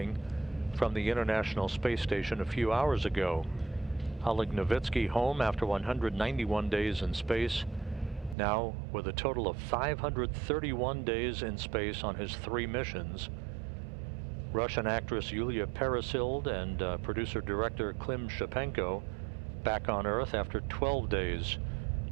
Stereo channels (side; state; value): left; drops out; at 8.3 s